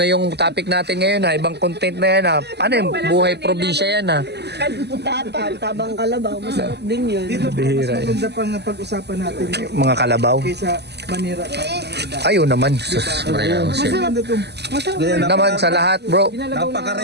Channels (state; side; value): late; left; 0.49 ms